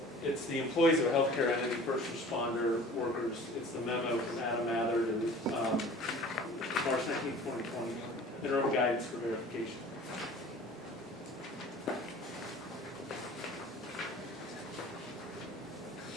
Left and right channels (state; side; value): normal; both; correlation 0.45